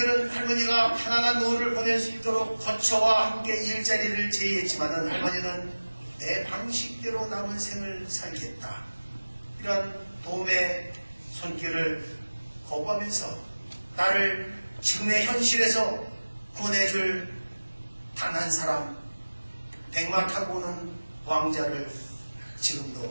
할머니가 편안한 노후를 보낼 수 있도록 거처와 함께 일자리를 제의했지만 할머니는 내 방식대로 남은 생을 살겠다, 이런 도움의 손길을 거부하면서 나를 지금의 현실에서 구원해줄 단 한 사람, 백마 타고 오는 왕자를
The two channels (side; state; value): both; inverted; correlation -1.00